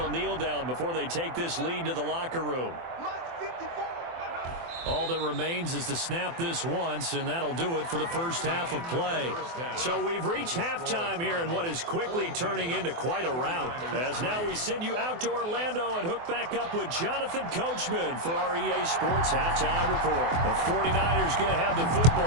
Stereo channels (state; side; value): late; left; 24 ms